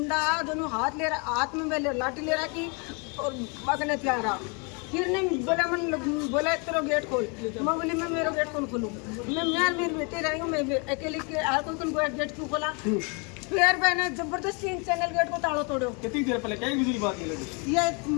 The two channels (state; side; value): quieter; right; 33.4 dB